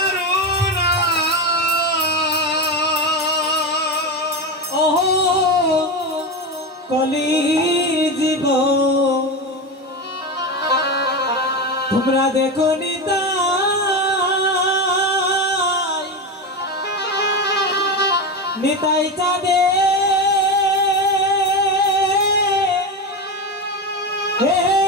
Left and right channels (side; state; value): both; normal; correlation 0.18